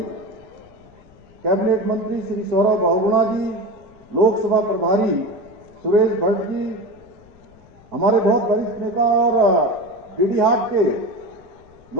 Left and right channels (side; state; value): left; noise; rumble, 27 dB below the sound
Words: कैबिनेट मंत्री श्री सौरभ बहुगुणा जी, लोकसभा प्रभारी सुरेश भट्ट जी, हमारे बहुत वरिष्ठ नेता और डीडीहाट के